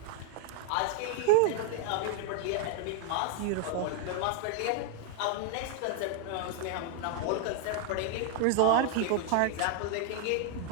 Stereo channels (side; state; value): both; different; correlation -0.01